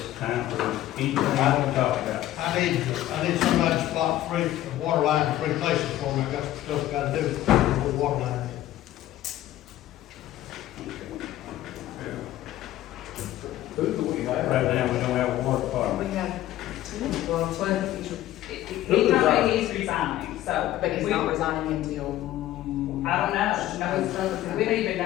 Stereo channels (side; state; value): right; quieter; 14.0 dB